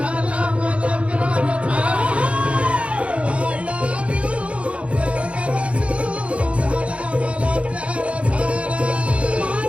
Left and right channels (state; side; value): late; left; 0.062 ms